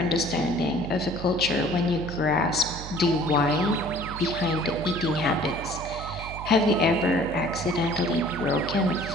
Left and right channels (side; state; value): right; noise; hum, 10 dB below the sound